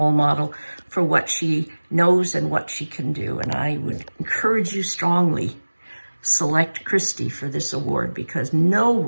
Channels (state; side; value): inverted; both; correlation -1.00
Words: model for what she knows and what she can do. And I would encourage you strongly, select Kristy for this award, because no